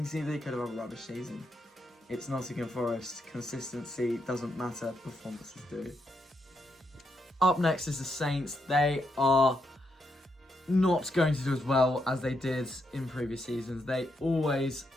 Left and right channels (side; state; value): both; normal; correlation 0.80